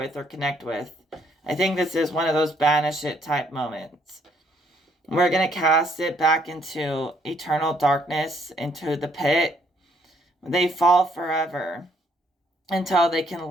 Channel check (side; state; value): both; normal; correlation 0.68